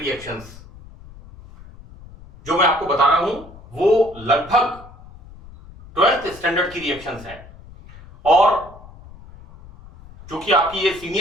जो मैं आपको बता रहा हूं वो लगभग 12th स्टैंडर्ड की रिएक्शंस हैं। और चूंकि आपकी ये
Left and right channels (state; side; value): noise; left; rumble, 20 dB below the sound